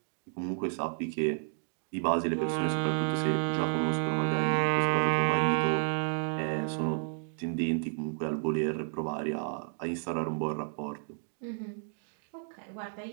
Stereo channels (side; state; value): left; silent; 56 dB below the other